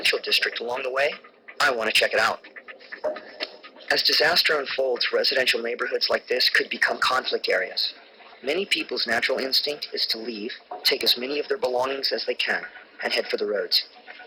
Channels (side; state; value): both; identical; correlation 1.00